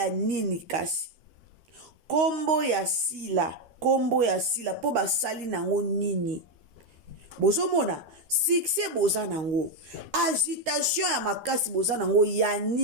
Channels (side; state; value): left; late; 13 ms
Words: nini kasi kombo ya sila po basali nango nini bozomona succès boza nango agitation ya makasi boza nango ya